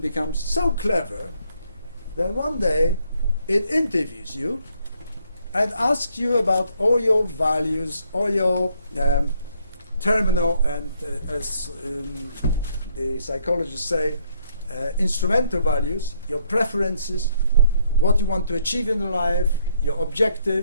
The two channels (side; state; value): both; inverted; correlation -0.70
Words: becomes so clever that one day it interviews you and asks you about all your values, all your terminal and, as the psychologists say, instrumental values, your preferences, what you want to achieve in life, your